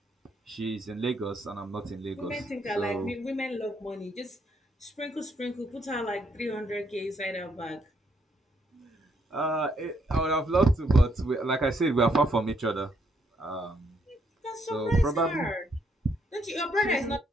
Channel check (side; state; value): both; normal; correlation 0.73